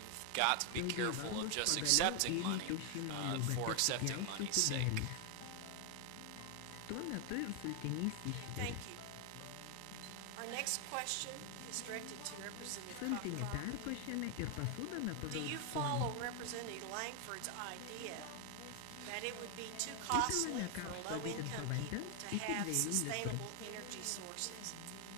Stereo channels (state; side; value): different; both; correlation 0.00